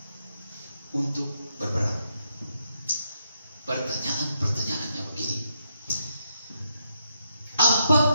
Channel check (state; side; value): inverted; both; correlation -0.79